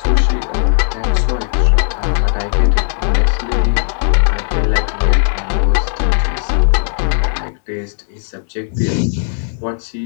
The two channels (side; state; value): right; silent; digital silence